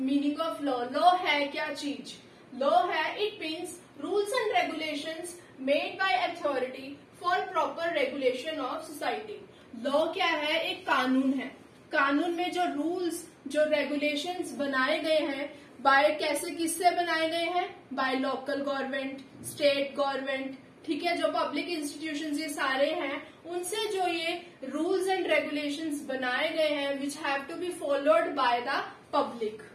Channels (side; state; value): both; identical; correlation 1.00